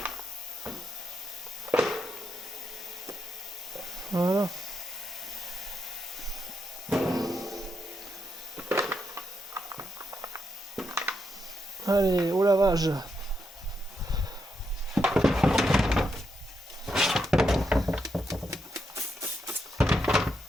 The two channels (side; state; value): both; normal; correlation 0.82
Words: Voilà. Allez, au lavage.